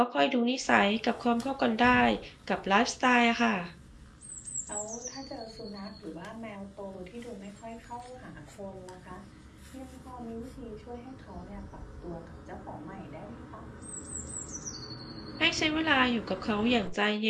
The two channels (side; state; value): both; identical; correlation 1.00